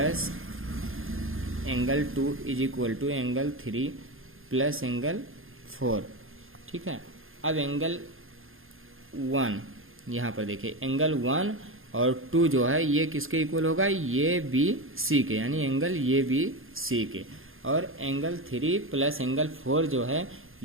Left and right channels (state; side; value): late; left; 0.60 ms